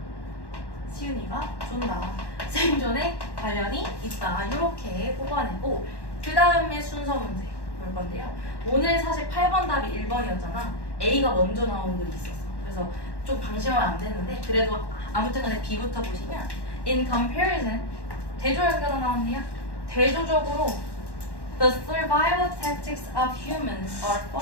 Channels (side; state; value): right; late; 1.1 ms